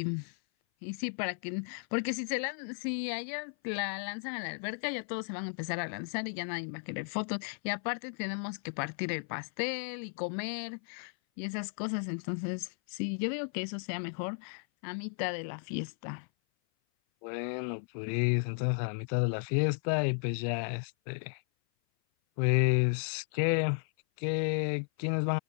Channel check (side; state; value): right; silent; 55 dB below the other